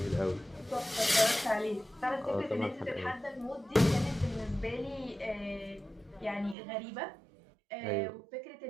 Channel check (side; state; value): left; drops out; at 6.6 s